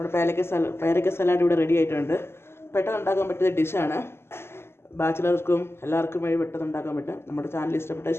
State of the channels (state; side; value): late; right; 0.12 ms